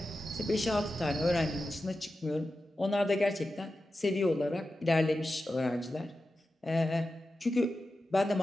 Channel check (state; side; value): normal; both; correlation 0.92